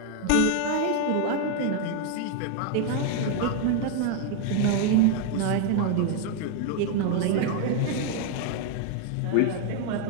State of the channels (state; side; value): different; both; correlation 0.00